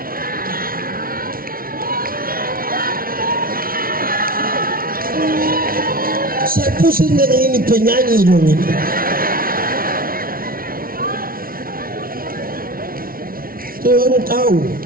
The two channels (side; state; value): left; late; 0.43 ms